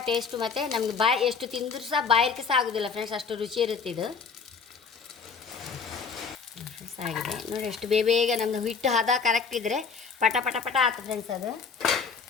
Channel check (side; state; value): right; quieter; 5.6 dB